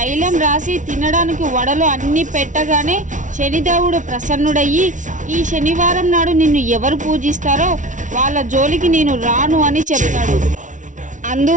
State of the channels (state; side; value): late; left; 0.37 ms